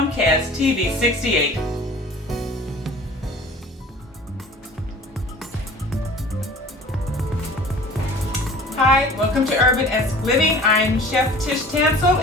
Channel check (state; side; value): normal; both; correlation 0.45